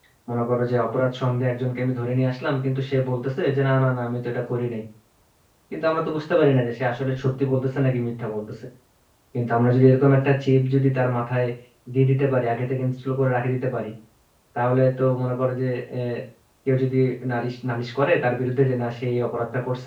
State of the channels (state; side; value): identical; both; correlation 1.00